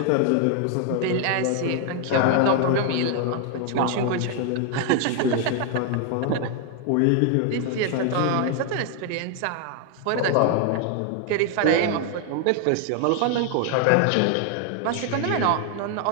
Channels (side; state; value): both; different; correlation 0.00